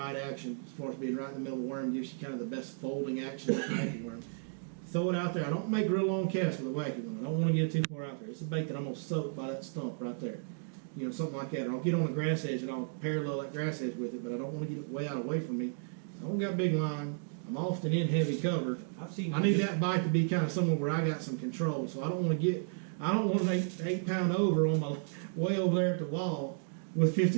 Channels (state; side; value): silent; left; digital silence